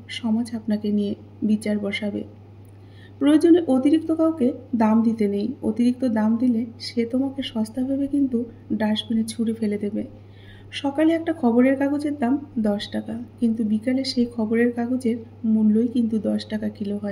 সমাজ আপনাকে নিয়ে বিচার বসাবে। প্রয়োজনে অতিরিক্ত কাউকে দাম দিতে নেই। অতিরিক্ত দাম দিলে সে তোমাকে সস্তা ভেবে কিন্তু ডাস্টবিনে ছুঁড়ে ফেলে দেবে। সকালে একটা খবরের কাগজের দাম 10 টাকা, কিন্তু বিকালে সেই খবরের কাগজের মূল্যই কিন্তু 10 টাকা কিলো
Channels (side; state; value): both; identical; correlation 1.00